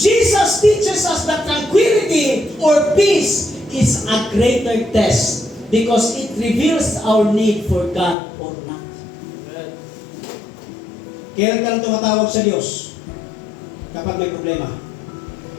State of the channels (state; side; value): drops out; right; at 8.2 s